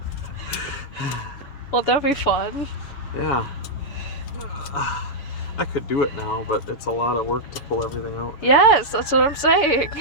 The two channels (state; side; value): late; right; 7.0 ms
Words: Well, that'd be fun. Yeah. I could do it now, but it's a lot of work to pull everything out. Yes, that's what I'm saying.